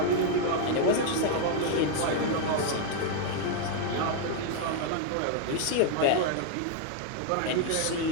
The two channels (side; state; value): both; different; correlation 0.00